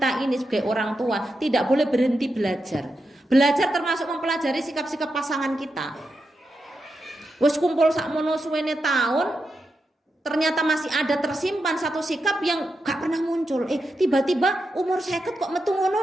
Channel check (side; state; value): both; normal; correlation 0.87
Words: ini sebagai orang tua tidak boleh berhenti belajar. Belajar termasuk mempelajari sikap-sikap pasangan kita. Wes kumpul sakmono suwene tahun, ternyata masih ada tersimpan satu sikap yang gak pernah muncul. Tiba-tiba umur 50 kok metu